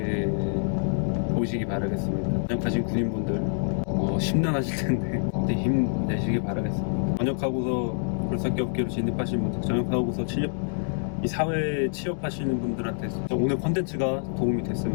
보시기 바라겠습니다. 전역하신 군인분들 심란하실 텐데 그때 힘내시기 바라겠습니다. 전역하고서 굴삭기 업계로 진입하신 분들, 전역하고서 이 사회에 취업하시는 분들한테 오늘 컨텐츠가 도움이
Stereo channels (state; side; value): silent; right; 61 dB below the other